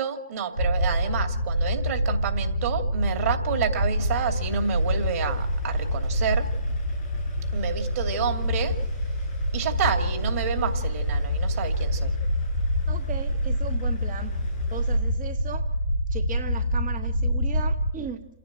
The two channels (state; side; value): inverted; both; correlation -0.63